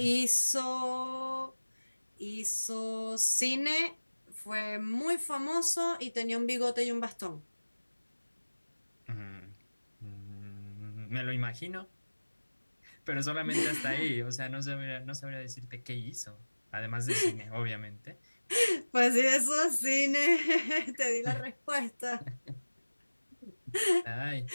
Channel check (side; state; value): both; inverted; correlation -1.00